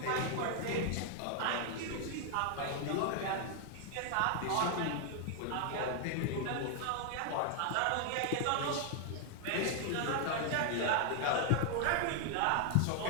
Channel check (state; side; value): different; both; correlation 0.00